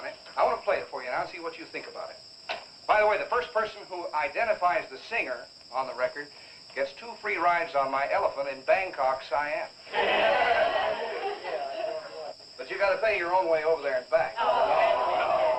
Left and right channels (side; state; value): both; identical; correlation 1.00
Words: it. I want to play it for you now and see what you think about it. By the way, the first person who identifies the singer on the record gets 2 free rides on my elephant in Bangkok, Siam. But you got to pay your own way over there and back.